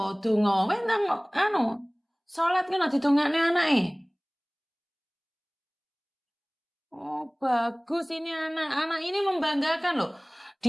donga, wentang salat kan didongakne anake. Oh, bagus ini anak ini membanggakan loh.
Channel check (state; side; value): identical; both; correlation 1.00